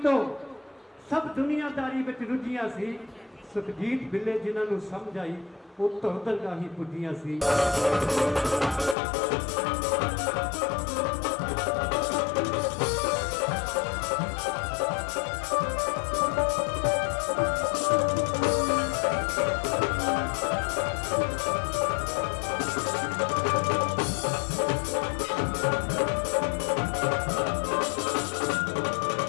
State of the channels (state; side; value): drops out; right; at 9.0 s